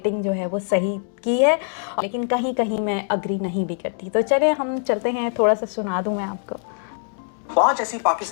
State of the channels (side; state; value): right; silent; digital silence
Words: जो है वो सही की है, लेकिन कहीं कहीं मैं अग्री नहीं भी करती। तो चलिए हम चलते हैं, थोड़ा सा सुना दूँ मैं आपको। 5 ऐसी